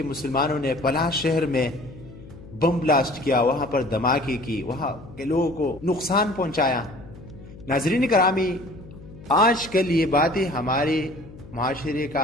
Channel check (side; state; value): left; noise; hum, 18 dB below the sound